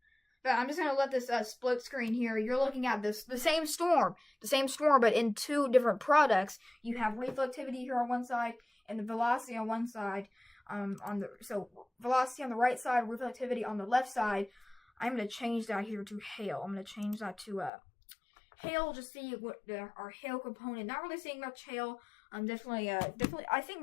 But I'm just going to let this split screen here. You're looking at the same storm, but in two different products. You have reflectivity here on one side and the velocity on one side. So velocity on the right side, reflectivity on the left side. I'm going to change that here to hail. I'm going to change that to hail. Just see what our hail component. Not really seeing much hail. Definitely. I think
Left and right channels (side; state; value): right; drops out; at 17.7 s